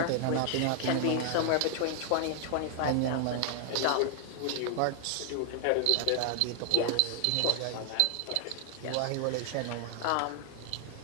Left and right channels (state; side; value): different; both; correlation 0.00